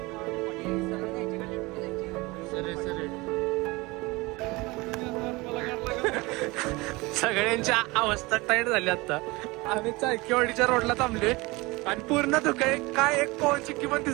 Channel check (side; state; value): left; quieter; 23.2 dB